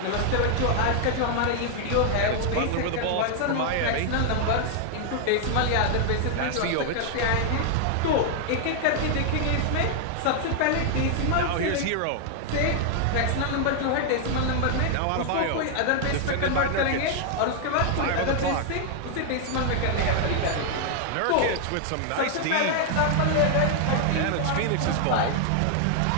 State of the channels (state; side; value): different; both; correlation 0.00